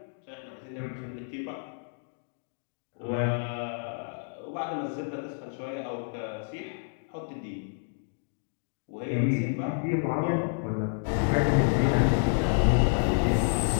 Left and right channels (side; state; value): right; silent; digital silence